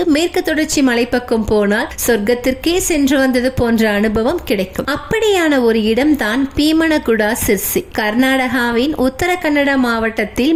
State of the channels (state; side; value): identical; both; correlation 1.00